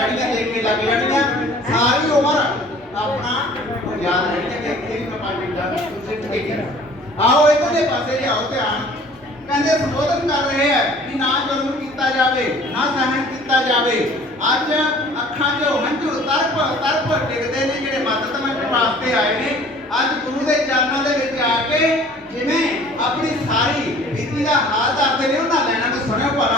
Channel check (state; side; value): normal; both; correlation 0.50